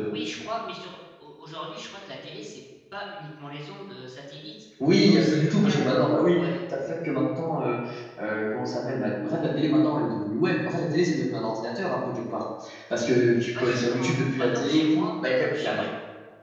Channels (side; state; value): both; identical; correlation 1.00